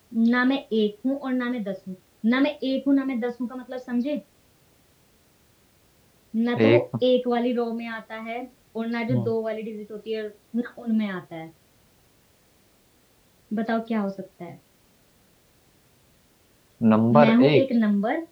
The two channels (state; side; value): identical; both; correlation 1.00